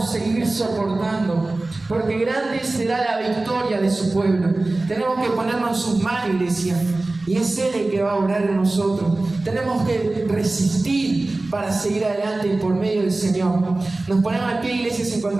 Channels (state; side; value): quieter; left; 3.0 dB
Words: seguir soportando, porque grande será la victoria de su pueblo. Tenemos que ponernos en sus manos, iglesia, y es Él el que va a orar en nosotros. Tenemos que resistir para seguir adelante por medio del Señor. Nos ponemos de pie, iglesia, si